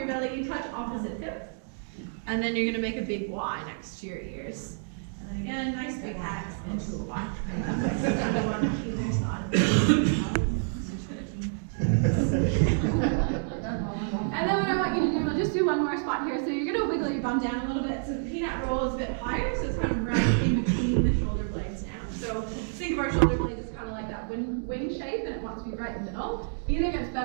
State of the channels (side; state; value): left; silent; digital silence